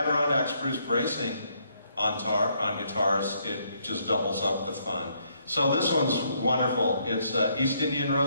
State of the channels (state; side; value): inverted; both; correlation -0.72